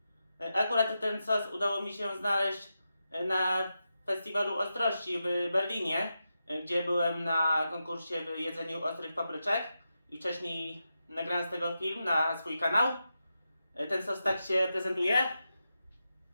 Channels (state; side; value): inverted; both; correlation -0.89